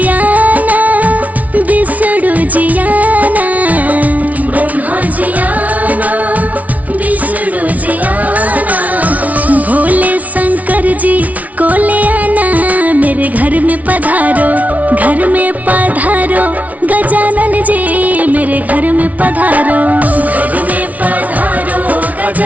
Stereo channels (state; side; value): late; left; 0.071 ms